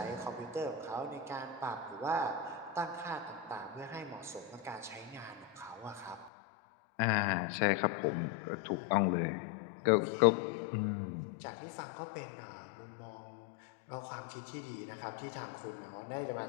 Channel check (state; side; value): drops out; right; at 6.3 s